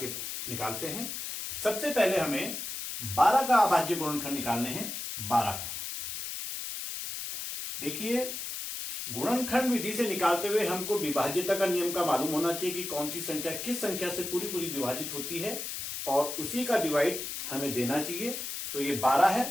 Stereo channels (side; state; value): left; noise; hiss, 5 dB below the sound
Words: निकालते हैं। सबसे पहले हमें 12 का अभाज्य गुणनखंड निकालने हैं। 12 का देखिए, गुणनखंड विधि से निकालते हुए हमको विभाज्यता का नियम का मालूम होना चाहिए कि कौन सी संख्या किस संख्या से पूरी विभाजित होती है, और उसी का डिवाइड हमें देना चाहिए। तो ये 12 है,